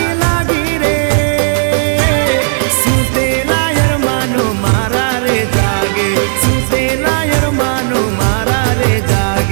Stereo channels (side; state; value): left; silent; digital silence